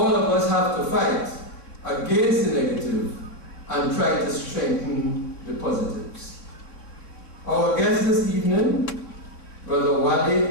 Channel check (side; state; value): right; late; 3.5 ms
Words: of us have to fight against the negative and try to strengthen the positives. Our guest this evening, Brother